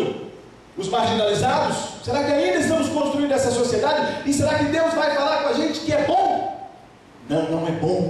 os marginalizados? Será que ainda estamos construindo essa sociedade? E será que Deus vai falar com a gente que é bom? Não, não é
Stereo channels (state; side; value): identical; both; correlation 1.00